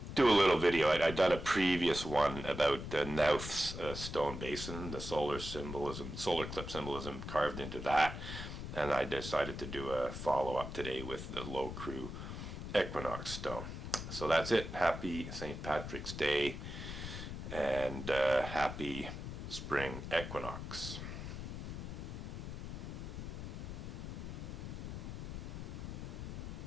do a little video. I'd done a previous one about Knauth's stone basin, the solar eclipse symbolism carved into that, and I decided to do a follow-up today with the Loughcrew Equinox stone. So that's it. Happy St. Patrick's Day, and happy spring equinox.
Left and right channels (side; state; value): left; noise; rumble, 7 dB below the sound